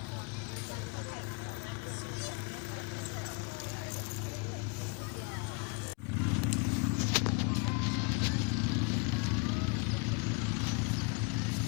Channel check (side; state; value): right; quieter; 30.0 dB